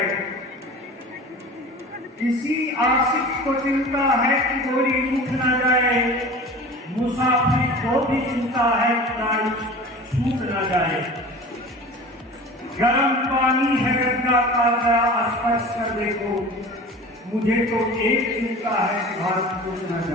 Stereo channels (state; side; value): normal; both; correlation 0.38